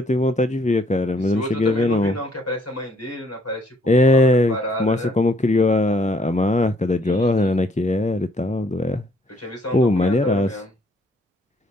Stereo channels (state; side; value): normal; both; correlation 0.65